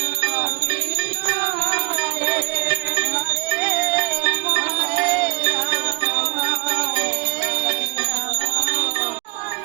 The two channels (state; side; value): quieter; left; 27.8 dB